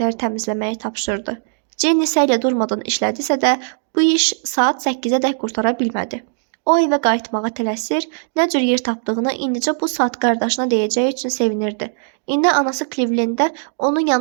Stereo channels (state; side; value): silent; left; digital silence